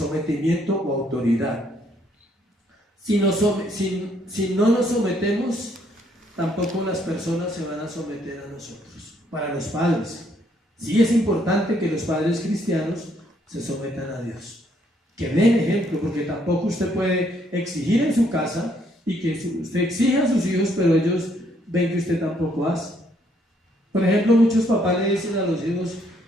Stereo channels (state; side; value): normal; both; correlation 0.69